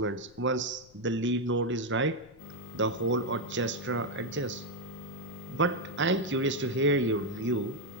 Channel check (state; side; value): noise; left; rumble, 27 dB below the sound